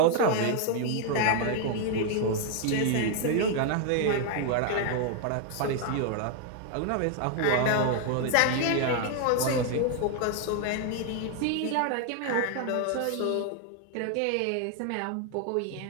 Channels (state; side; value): different; both; correlation 0.00